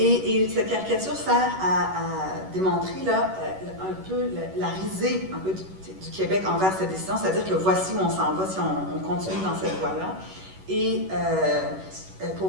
cette caricature sert à démontrer là, un peu la risée un peu du Québec envers cette décision, c'est-à-dire que voici où on s'en va si on continue dans cette voie-là. Et pour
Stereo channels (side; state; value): left; late; 11 ms